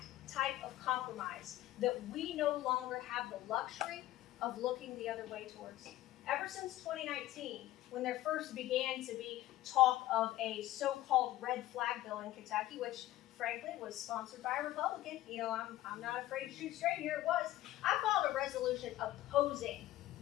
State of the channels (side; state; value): right; quieter; 15.3 dB